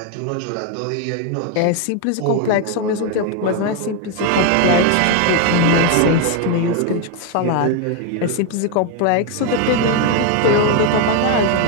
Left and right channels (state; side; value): different; both; correlation 0.01